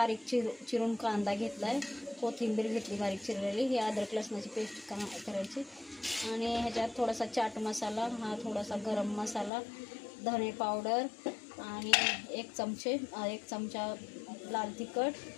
चिरून कांदा घेतलाय, कोथिंबीर घेतली बारीक चिरलेली। ही अद्रक लसणाची पेस्ट करायची आणि ह्याच्यात थोडासा चाट मसाला, हा थोडासा गरम मसाला, धने पावडर आणि एक चमचा लाल तिखट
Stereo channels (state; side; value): drops out; right; at 9.5 s